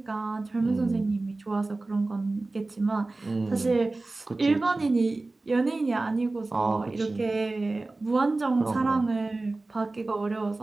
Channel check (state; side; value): quieter; left; 3.2 dB